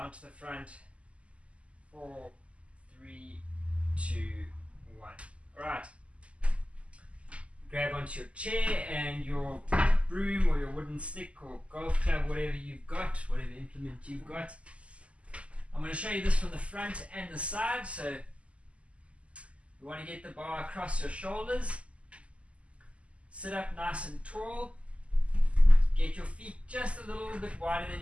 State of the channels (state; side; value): late; left; 0.060 ms